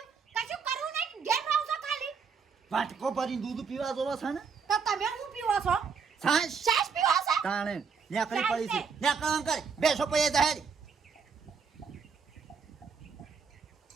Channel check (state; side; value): quieter; left; 5.8 dB